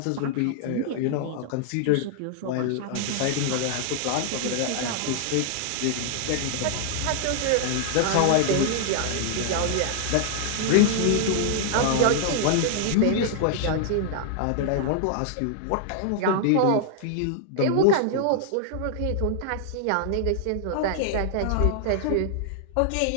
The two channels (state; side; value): different; both; correlation -0.01